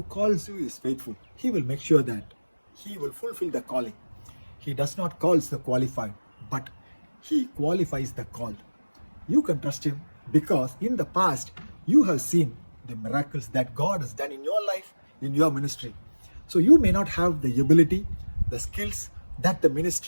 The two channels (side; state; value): both; inverted; correlation -1.00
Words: calls you is faithful. He will make sure that he will fulfill the calling. He does not call the qualified, but he qualifies the called. You can trust him because in the past you have seen the miracles that God has done in your life, in your ministry. So you may not have the ability, the skills that the